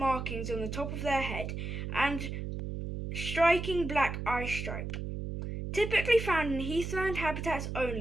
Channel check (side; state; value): right; noise; hum, 5 dB below the sound